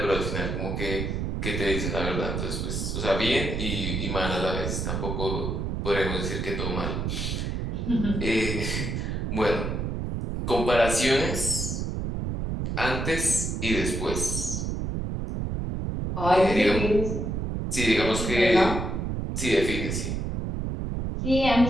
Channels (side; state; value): right; noise; rumble, 2 dB below the sound